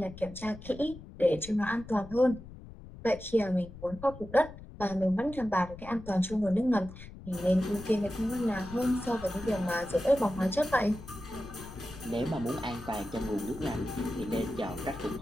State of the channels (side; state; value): left; noise; rumble, 15 dB below the sound